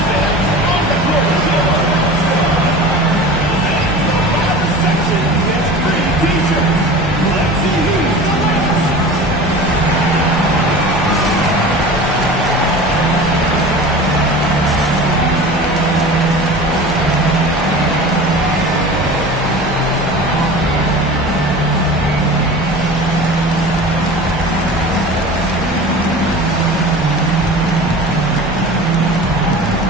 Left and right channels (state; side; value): normal; both; correlation 0.36